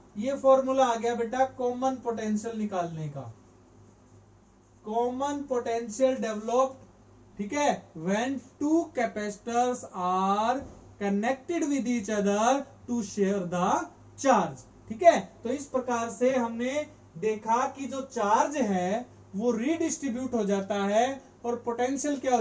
ये फॉर्मूला आ गया बेटा कॉमन पोटेंशियल निकालने का। कॉमन पोटेंशियल डेवलप्ड, ठीक है, when two capacitors are connected with each other to share the charge. ठीक है, तो इस प्रकार से हमने देखा कि जो चार्ज है वो रीडिस्ट्रीब्यूट हो जाता है और पोटेंशियल क्या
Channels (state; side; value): identical; both; correlation 1.00